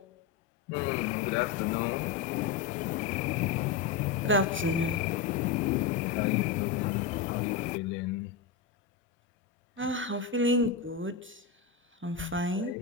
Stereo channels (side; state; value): right; quieter; 6.3 dB